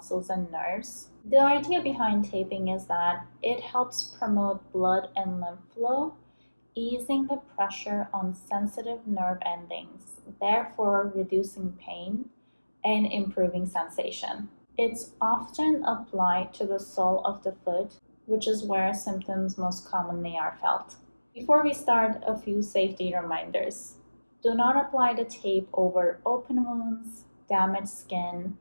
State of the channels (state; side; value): inverted; both; correlation -1.00